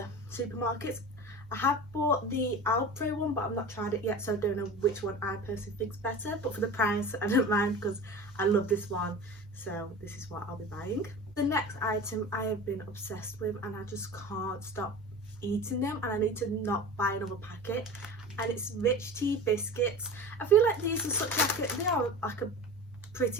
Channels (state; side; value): normal; both; correlation 0.34